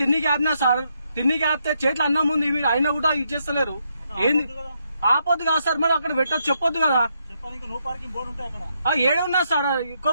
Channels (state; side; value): inverted; both; correlation -0.78